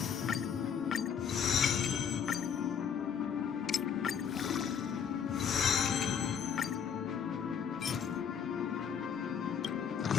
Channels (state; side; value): quieter; right; 7.5 dB